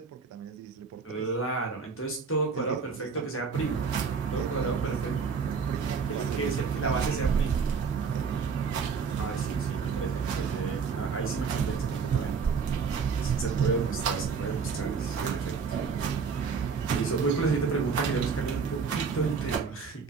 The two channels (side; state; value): left; quieter; 5.5 dB